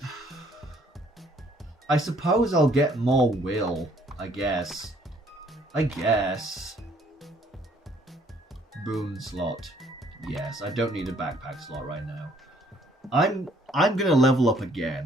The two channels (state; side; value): normal; both; correlation 0.63